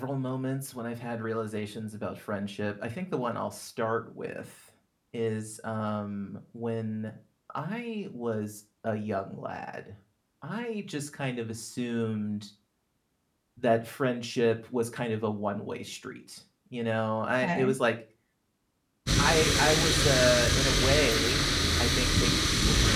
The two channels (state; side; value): identical; both; correlation 1.00